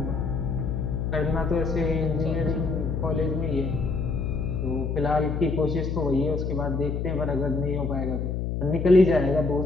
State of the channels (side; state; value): left; noise; hum, 2 dB below the sound